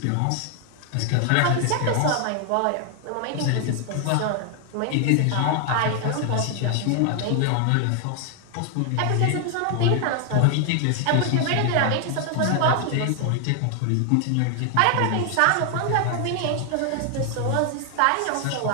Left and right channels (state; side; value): different; both; correlation 0.00